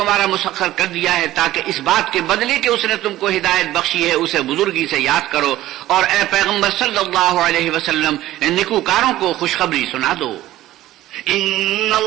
مسخر کر دیا ہے تاکہ اس بات کے بدلے کہ اس نے تم کو ہدایت بخشی ہے اسے بزرگی سے یاد کرو. اور اے پیغمبر صلی اللہ علیہ وسلم نیکوکاروں کو خوشخبری سنا دو. ان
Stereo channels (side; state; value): left; quieter; 15.0 dB